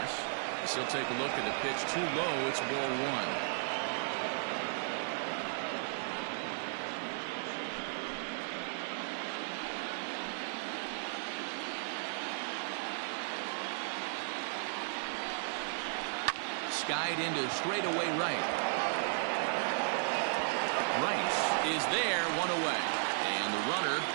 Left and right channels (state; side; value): silent; left; 54 dB below the other